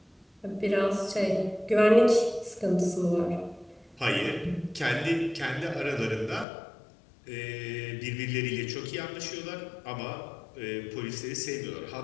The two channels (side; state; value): right; drops out; at 6.5 s